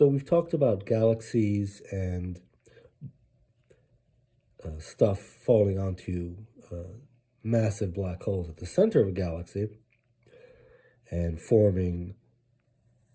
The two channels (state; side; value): identical; both; correlation 1.00